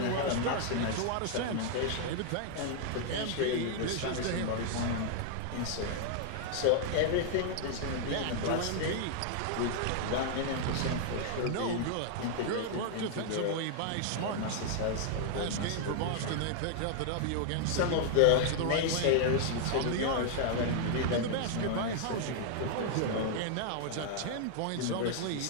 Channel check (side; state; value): both; different; correlation 0.00